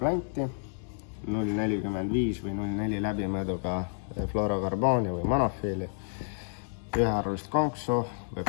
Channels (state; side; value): silent; right; digital silence